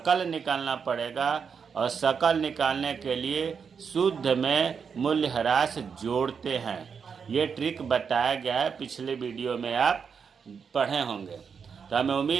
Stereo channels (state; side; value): quieter; left; 6.3 dB